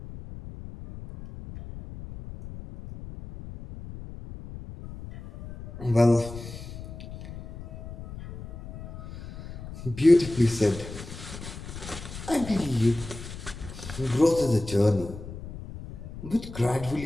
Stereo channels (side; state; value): left; noise; rumble, 12 dB below the sound